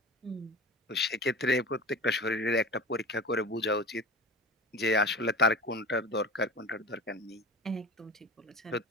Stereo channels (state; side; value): normal; both; correlation 0.34